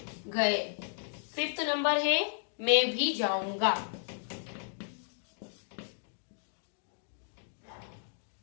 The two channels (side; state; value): right; silent; digital silence